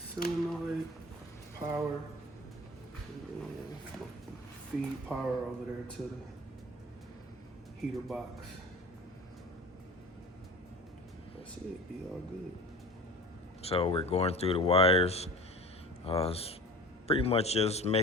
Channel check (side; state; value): both; normal; correlation 0.38